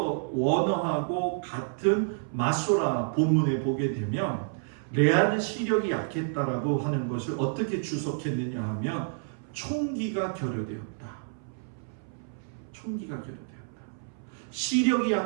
원어하고 같은 마소라 본문에 보게 되면 레아는 시력이 약했다라고 하는 것을 어떻게 주석했느냐 하면 총기가 결여되었다. 총기가 결여되었다. 시력이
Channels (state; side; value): silent; left; 58 dB below the other